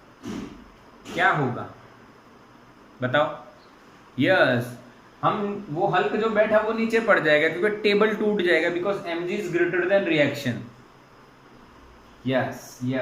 क्या होगा बताओ? यस, हम वो हल्क जो बैठा वो नीचे पड़ जाएगा क्योंकि टेबल टूट जाएगा because mg is greater than reaction. Yes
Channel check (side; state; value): both; identical; correlation 1.00